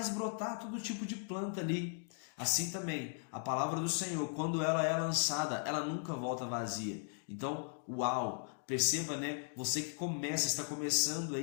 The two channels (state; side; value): silent; right; 53 dB below the other